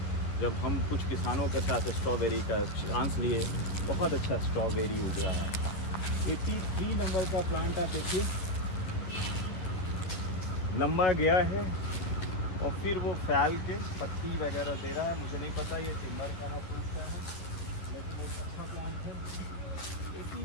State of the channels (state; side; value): late; right; 11 ms